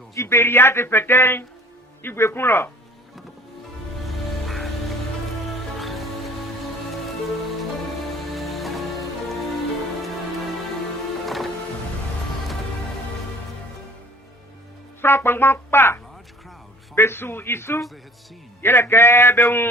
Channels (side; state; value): both; normal; correlation 0.50